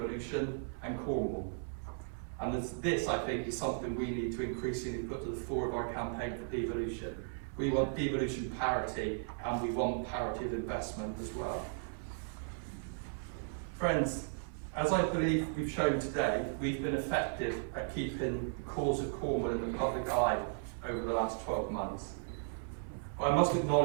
and Cornwall. And this, I think, is something we need to increasingly put to the fore of our campaign for devolution. We want devolution parity, and we want parity of investment as well. Friends, as I believe we've shown today, we've been effective at keeping the cause of Cornwall in the public eye over the last 12 months. But I must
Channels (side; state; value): left; silent; 54 dB below the other